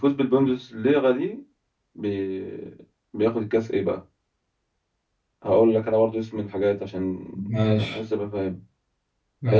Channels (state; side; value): identical; both; correlation 1.00